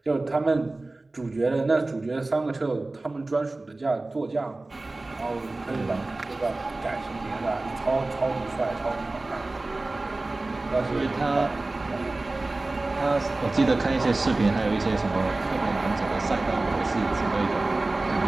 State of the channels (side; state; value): left; quieter; 3.0 dB